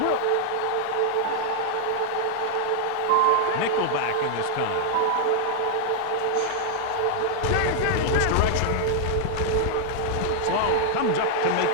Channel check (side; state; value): both; different; correlation 0.00